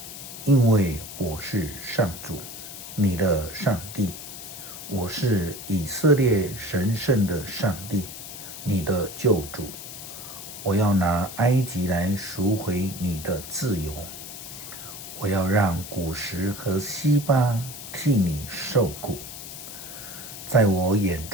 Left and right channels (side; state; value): left; noise; hiss, 11 dB below the sound